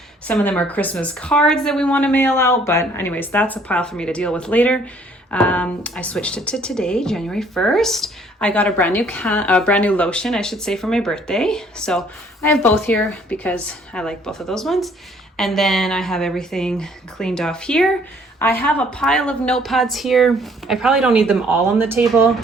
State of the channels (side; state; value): both; normal; correlation 0.60